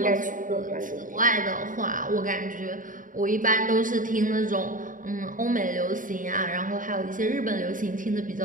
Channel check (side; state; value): left; late; 0.39 ms